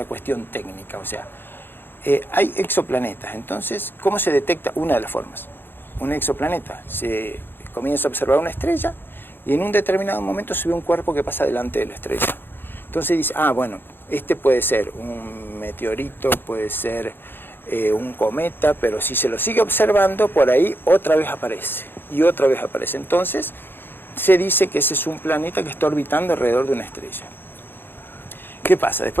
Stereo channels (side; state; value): right; late; 0.10 ms